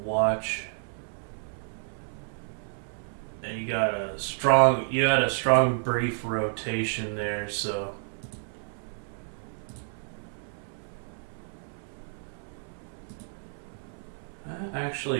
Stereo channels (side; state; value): left; silent; 58 dB below the other